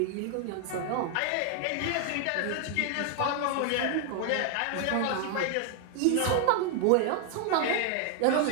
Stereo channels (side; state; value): both; different; correlation 0.00